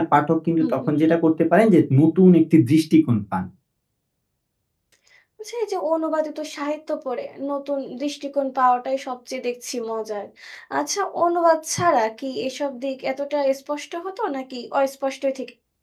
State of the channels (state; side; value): identical; both; correlation 1.00